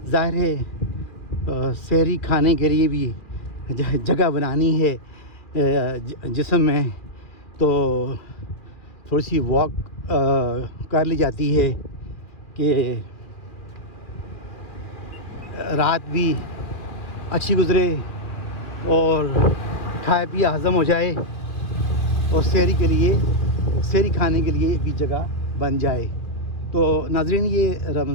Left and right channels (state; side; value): late; right; 2.5 ms